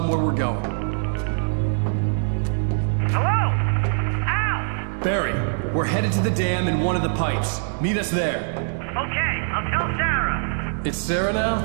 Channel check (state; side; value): silent; left; 63 dB below the other